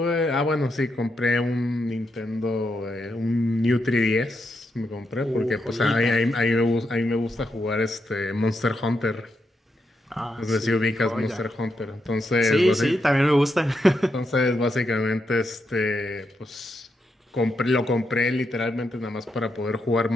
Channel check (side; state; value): both; normal; correlation 0.83